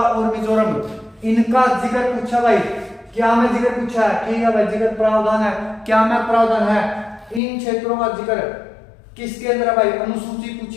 मिजोरम। इनका जिक्र पूछा भाई, क्या में जिक्र पूछा है, ठीक है भाई, जिक्र प्रावधान है, क्या में प्रावधान है, इन क्षेत्रों का जिक्र किसके अंदर है भाई, अनुसूची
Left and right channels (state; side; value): drops out; right; at 7.4 s